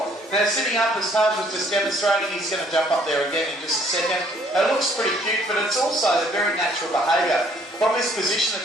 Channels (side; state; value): both; normal; correlation 0.62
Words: Now, sitting up, as Taj was just demonstrating, he's going to jump up there again in just a second. It looks pretty cute, but it's also a very natural behaviour. From this position, the